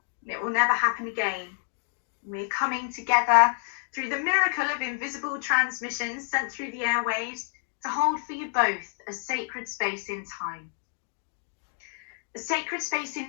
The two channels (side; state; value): right; silent; digital silence